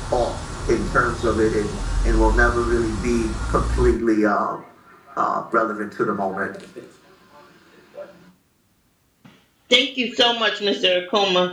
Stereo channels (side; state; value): both; identical; correlation 1.00